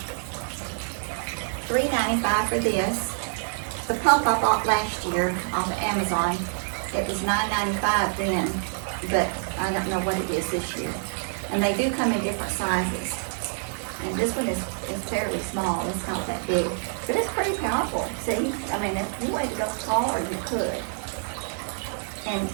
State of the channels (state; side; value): silent; left; 61 dB below the other